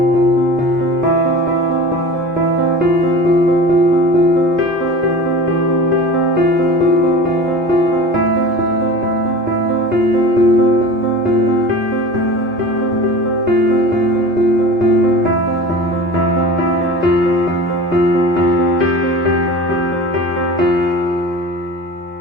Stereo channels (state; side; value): normal; both; correlation 0.36